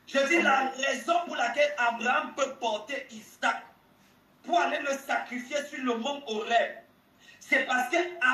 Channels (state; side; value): identical; both; correlation 1.00